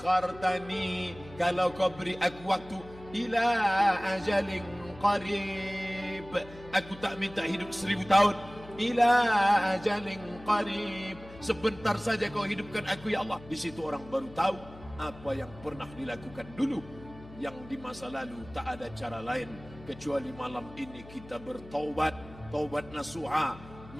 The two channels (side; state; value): left; noise; hum, 18 dB below the sound